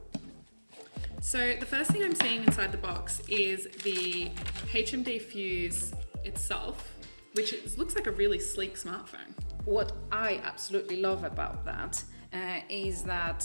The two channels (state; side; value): inverted; both; correlation -1.00